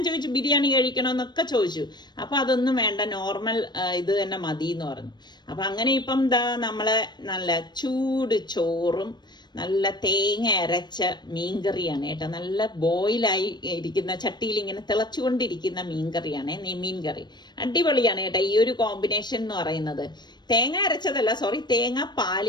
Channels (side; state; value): right; late; 0.21 ms